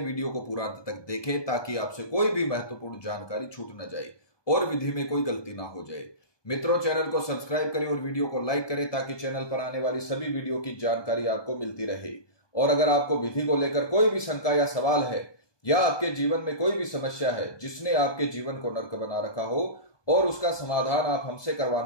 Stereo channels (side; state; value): right; late; 1.2 ms